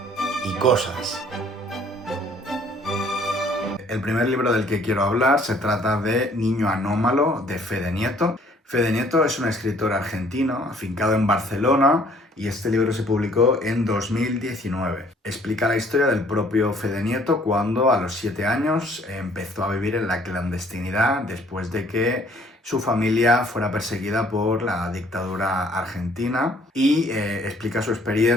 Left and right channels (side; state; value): both; normal; correlation 0.59